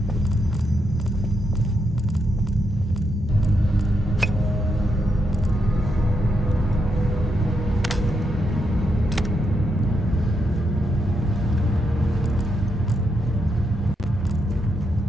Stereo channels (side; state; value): both; normal; correlation 0.81